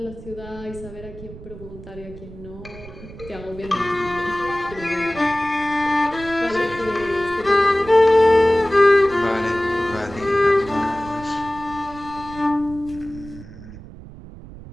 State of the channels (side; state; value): right; noise; rumble, 16 dB below the sound